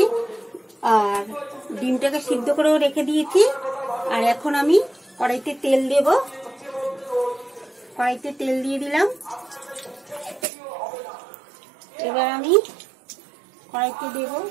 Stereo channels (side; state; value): left; drops out; at 10.5 s